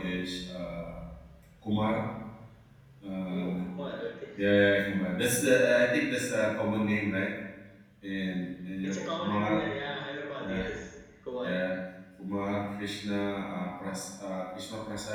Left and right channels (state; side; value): identical; both; correlation 1.00